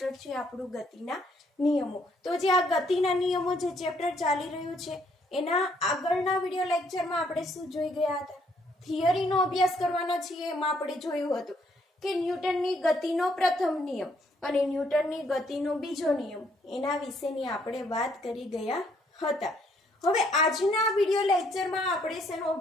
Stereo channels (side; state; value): both; normal; correlation 0.68